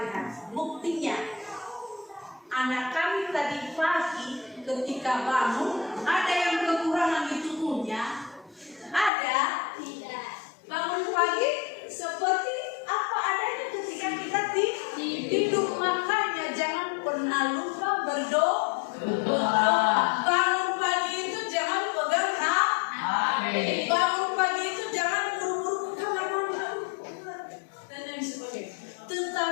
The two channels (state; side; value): drops out; right; at 9.1 s